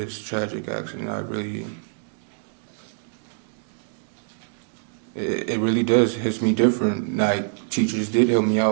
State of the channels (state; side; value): silent; left; digital silence